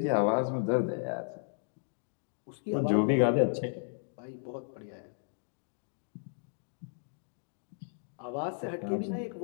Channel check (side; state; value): right; silent; digital silence